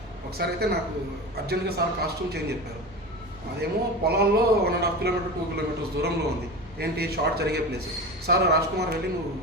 ఒకసారి అయితే నాకు అర్జెంట్గా సార్ కాస్ట్యూమ్ చేంజ్ చెప్పారు. అదేమో పొలాల్లో 1.5 కిలోమీటర్ 2 కిలోమీటర్స్ దూరంలో ఉంది. ఏంటి షార్ట్ జరిగే ప్లేస్. సార్ రాజ్ కుమార్ వెళ్ళి నువ్వు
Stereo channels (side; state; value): both; normal; correlation 0.28